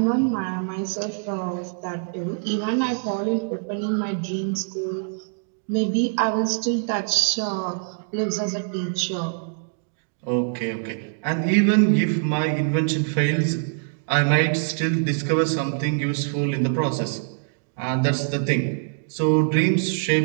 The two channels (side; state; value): left; silent; digital silence